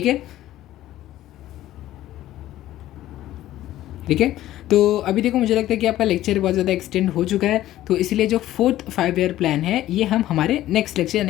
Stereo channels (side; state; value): right; quieter; 14.1 dB